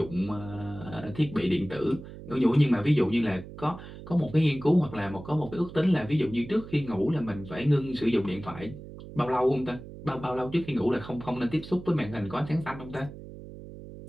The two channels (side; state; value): right; noise; hum, 14 dB below the sound